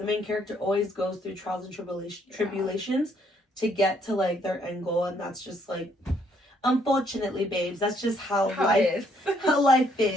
main character always goes through trials and tribulations to get to like their end goal. And that's just like, unfortunately, babes, that's just how life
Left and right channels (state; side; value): normal; both; correlation 0.69